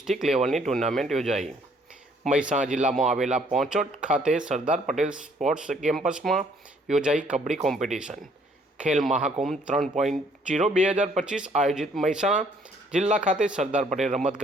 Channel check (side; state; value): both; normal; correlation 0.63